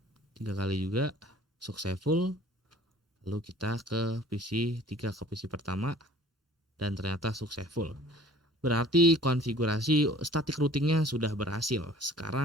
3 kali juga successful. Lalu kita ke PC 3 ke PC pertama dan ternyata successful. Berarti konfigurasi static routingnya sudah berhasil.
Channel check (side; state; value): both; normal; correlation 0.50